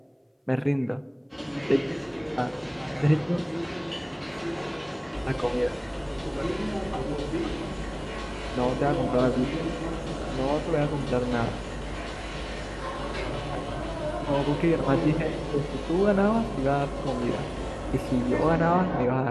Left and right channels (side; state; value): both; identical; correlation 1.00